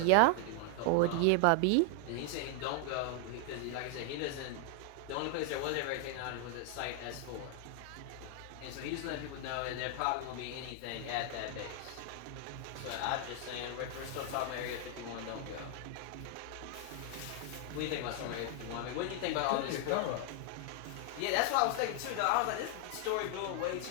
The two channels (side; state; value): both; different; correlation 0.00